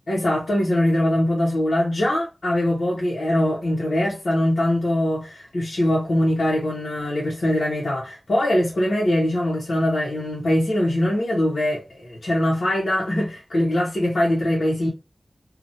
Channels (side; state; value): both; normal; correlation 0.95